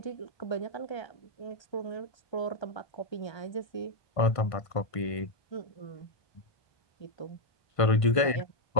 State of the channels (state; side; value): late; right; 1.5 ms